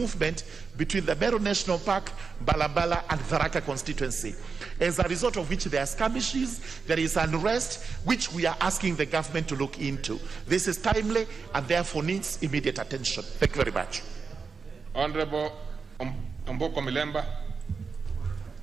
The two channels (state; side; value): quieter; left; 5.1 dB